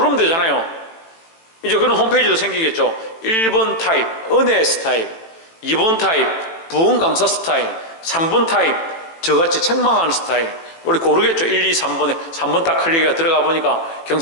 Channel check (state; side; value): late; right; 18 ms